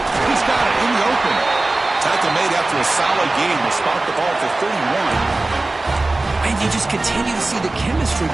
He's got it in the open. Tackle made after a solid game. They spot the ball for 31. And you just continue to see the chemistry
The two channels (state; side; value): quieter; left; 3.0 dB